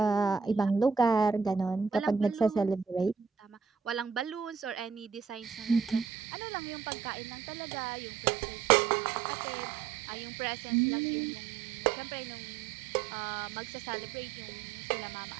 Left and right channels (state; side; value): drops out; left; at 6.1 s